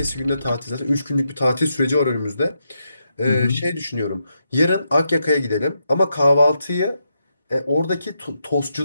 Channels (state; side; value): inverted; both; correlation -0.83